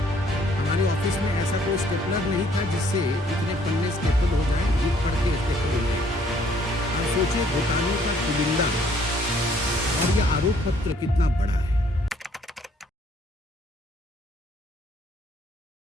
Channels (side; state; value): both; normal; correlation 0.63